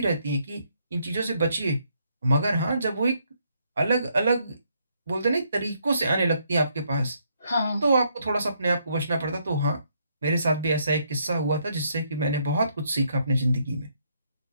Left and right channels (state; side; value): inverted; both; correlation -0.73